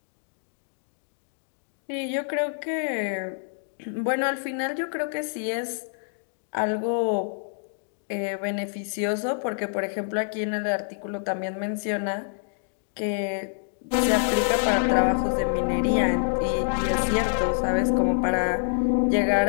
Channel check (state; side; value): silent; right; digital silence